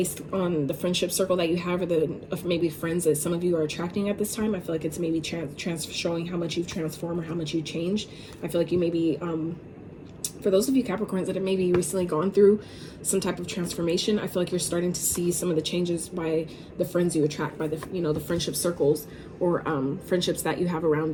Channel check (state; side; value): identical; both; correlation 1.00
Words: on the friendship circle that you have, or the maybe friends that some of you are attracting at this time. I feel like it's maybe showing how much you've transformed or how much you've changed. I feel like you may be for those of you Capricorns that have maybe recently gone through some type of transformation, I feel like you're starting to see some of the changes by the friends you attract, by the the friendship circles, or friendships that you have